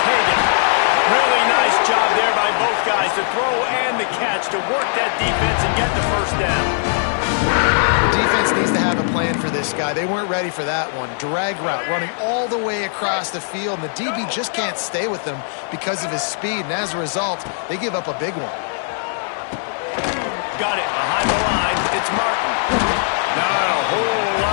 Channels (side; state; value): right; silent; digital silence